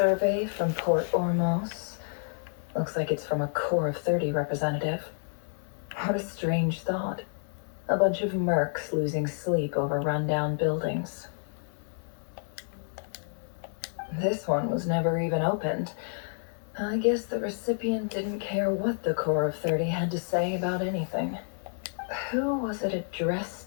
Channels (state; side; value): silent; right; digital silence